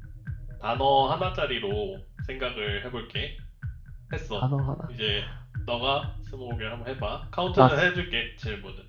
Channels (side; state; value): both; identical; correlation 1.00